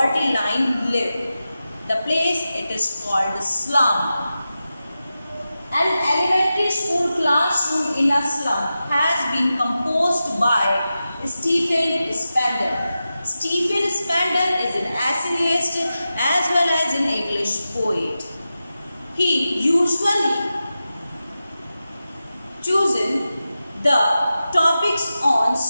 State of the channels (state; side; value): inverted; both; correlation -0.92